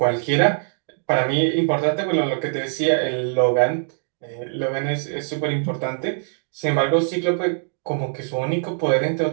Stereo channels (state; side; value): silent; left; digital silence